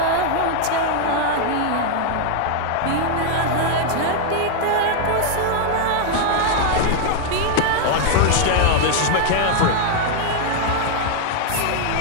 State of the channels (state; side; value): different; both; correlation 0.00